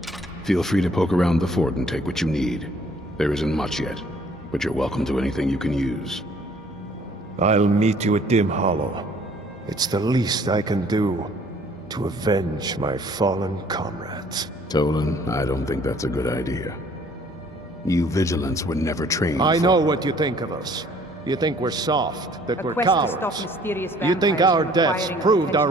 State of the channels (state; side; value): normal; both; correlation 0.58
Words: Feel free to poke around the fort and take what you need. There isn't much yet, but you're welcome to anything you can use. I'll meet you at Dim Hollow. It's the least I can do to avenge my fallen comrades. Tolan, I don't think that's a good idea. You Vigilants were never trained I know what you think of us. You think we're soft, that we're cowards. You think our deaths proved